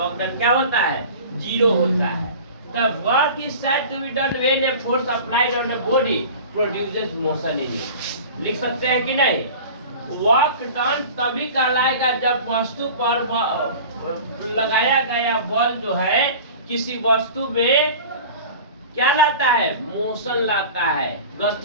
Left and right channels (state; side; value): inverted; both; correlation -0.38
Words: डन क्या होता है, जीरो होता है। The work is said to be done when a force applied on a body produces motion in it. लिख सकते हैं कि नहीं? वर्क डन तभी कहलाएगा जब वस्तु पर लगाया गया बल जो है किसी वस्तु में क्या लाता है, मोशन लाता है,